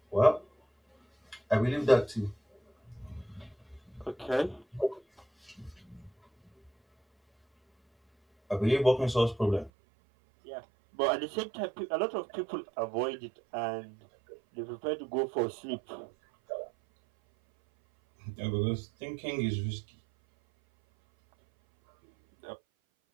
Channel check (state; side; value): drops out; left; at 9.7 s